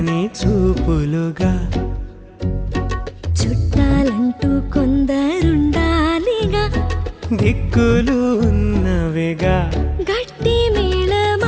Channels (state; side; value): identical; both; correlation 1.00